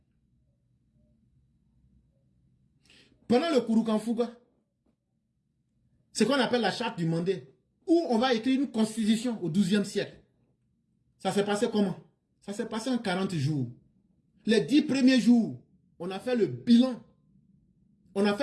Pendant le Kurukanfuga, ce qu'on appelle la charte du Mandé, où on va écrire une constitution au XIIe siècle. Ça s'est passé comment? Ça s'est passé en 40 jours. Les 10 premiers jours, on a fait le bilan. On a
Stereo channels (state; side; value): identical; both; correlation 1.00